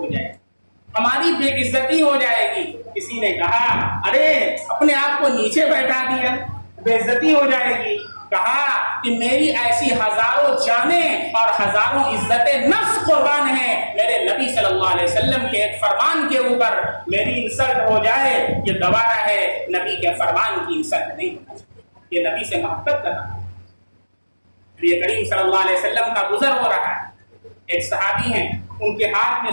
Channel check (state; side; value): inverted; both; correlation -1.00